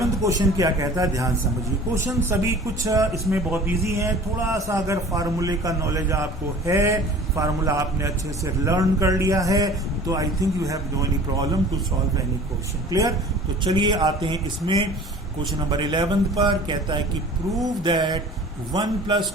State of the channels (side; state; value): both; normal; correlation 0.44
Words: क्वेश्चन क्या कहता है, ध्यान समझिए। क्वेश्चन सभी कुछ इसमें बहुत इजी है, थोड़ा सा अगर फार्मूले का नॉलेज आपको है, फार्मूला आपने अच्छे से लर्न कर लिया है, तो I think you have no any problem to solve any question. Clear. तो चलिए आते हैं इसमें क्वेश्चन नंबर 11 पर। कहता है कि prove that 1 plus